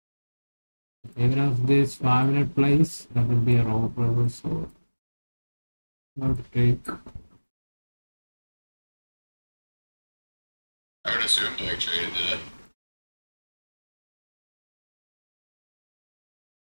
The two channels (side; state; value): both; inverted; correlation -1.00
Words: Even if this 5-minute plays, that will be a raw forever. So, not to take. I would assume Blake traded it.